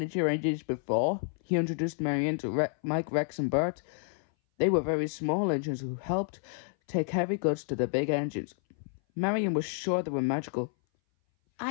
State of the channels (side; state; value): right; silent; 58 dB below the other